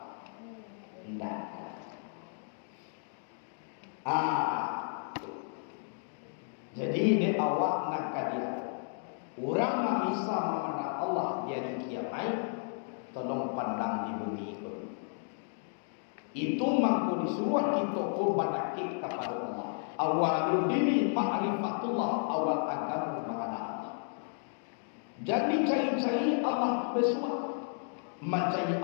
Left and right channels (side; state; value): right; silent; 56 dB below the other